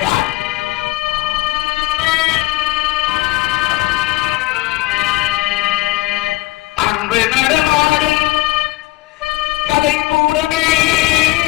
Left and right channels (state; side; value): quieter; right; 19.4 dB